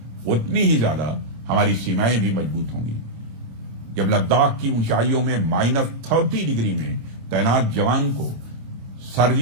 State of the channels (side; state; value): left; late; 26 ms